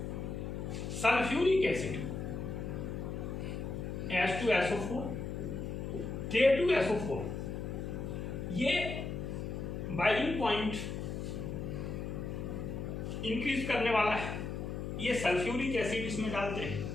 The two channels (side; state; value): left; noise; hum, 4 dB below the sound